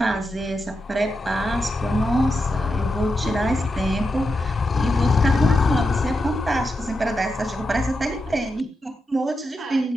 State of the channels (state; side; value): normal; both; correlation 0.87